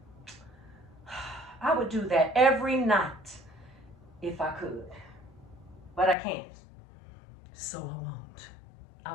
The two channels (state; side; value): drops out; right; at 6.2 s